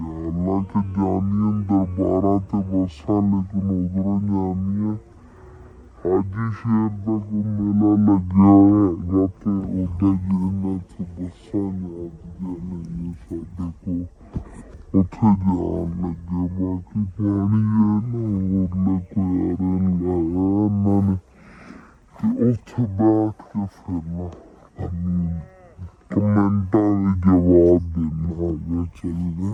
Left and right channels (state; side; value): identical; both; correlation 1.00